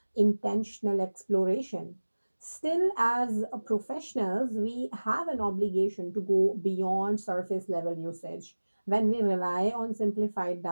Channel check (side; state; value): both; inverted; correlation -1.00